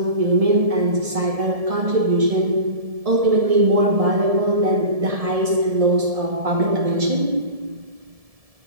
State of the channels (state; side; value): late; left; 1.7 ms